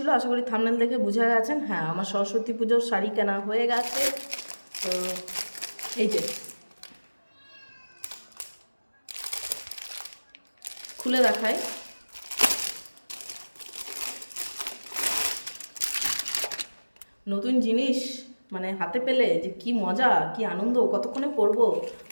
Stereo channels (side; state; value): both; inverted; correlation -1.00